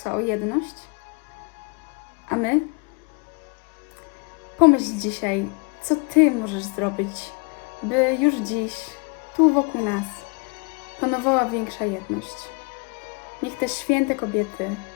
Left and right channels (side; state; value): right; quieter; 31.1 dB